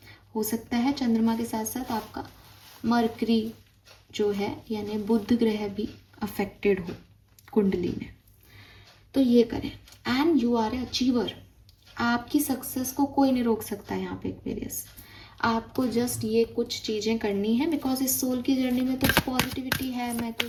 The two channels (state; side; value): identical; both; correlation 1.00